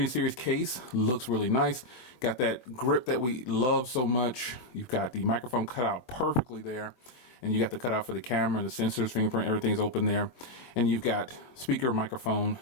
series case looks really nice. Got that grip that we love so much. You've got the microphone cut out perfectly there. And you got the cutout for the camera, the sensors, fingerprint, everything's open there. And you've got speaker, microphone,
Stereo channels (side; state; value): right; late; 24 ms